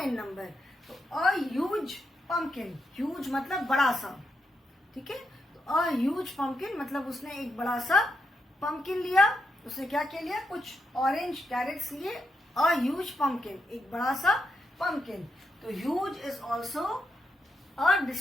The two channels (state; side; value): normal; both; correlation 0.83